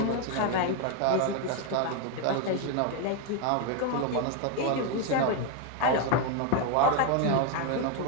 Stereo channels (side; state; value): both; different; correlation 0.01